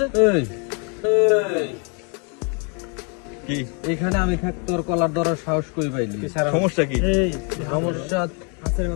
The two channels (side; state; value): right; quieter; 36.5 dB